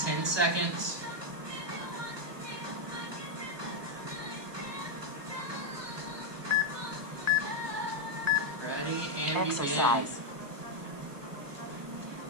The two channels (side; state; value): left; late; 1.2 ms